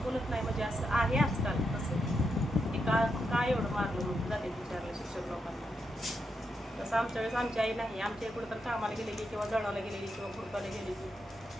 बोलत नाही, म्हणजे असं आहे आजकाल तसं. ते का एवढं मारलं म्हणून जाते विचारलं शिक्षक लोकांना. तसं आमच्या वेळेस आमची आई नाही. आमच्या कुठं तर कामाला गेलेली किंवा जळाला गेलेली किंवा खुरपाला गेलेली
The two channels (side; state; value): both; normal; correlation 0.83